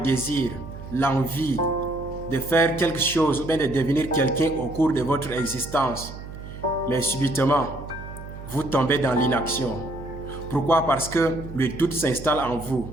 l'envie de faire quelque chose ou bien de devenir quelqu'un au cours de votre existence. Mais subitement, vous tombez dans l'inaction. Pourquoi? Parce que le doute s'installe en vous.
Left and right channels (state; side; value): noise; right; hum, 12 dB below the sound